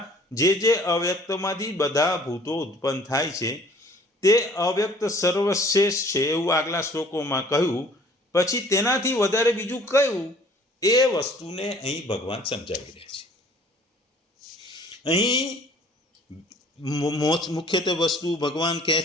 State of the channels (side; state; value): both; normal; correlation 0.54